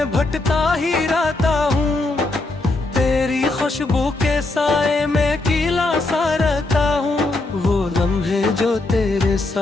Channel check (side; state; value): right; quieter; 3.0 dB